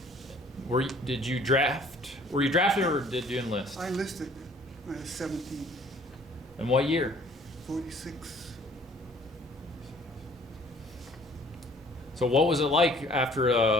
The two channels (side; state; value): both; normal; correlation 0.55